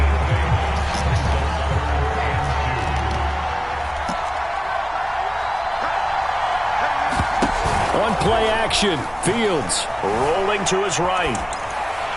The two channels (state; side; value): identical; both; correlation 1.00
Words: On play action, Fields rolling to his right.